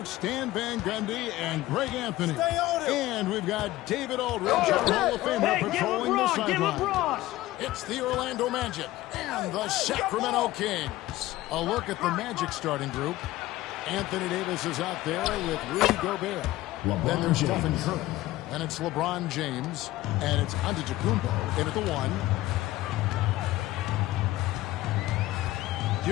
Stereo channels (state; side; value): quieter; right; 16.8 dB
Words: Stan Van Gundy and Greg Anthony. And we've got David Aldridge, our Hall of Famer, patrolling the sideline. It's the Orlando Magic and the Sacramento Kings. A look at the Magic starting group. Anthony Davis is out there with Rudy Gobert. Then there's Stephen Curry. And it's LeBron James. And it's Antetokounmpo in at the 1.